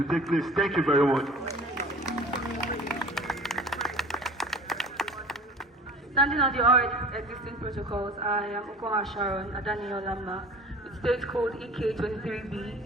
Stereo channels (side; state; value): both; normal; correlation 0.42